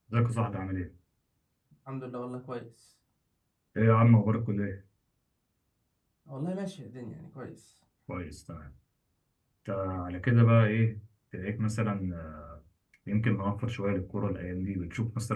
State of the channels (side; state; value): both; identical; correlation 1.00